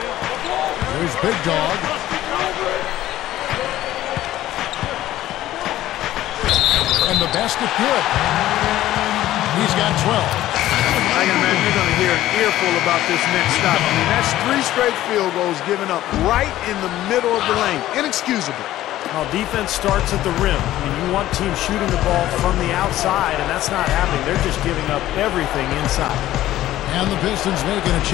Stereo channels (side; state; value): right; quieter; 14.3 dB